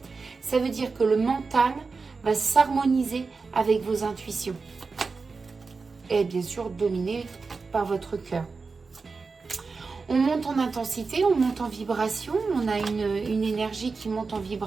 Ça veut dire que le mental va s'harmoniser avec vos intuitions. Et bien sûr, dominé par votre cœur. On monte en intensité, on monte en vibration, on a une énergie qui monte en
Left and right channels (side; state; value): left; quieter; 4.4 dB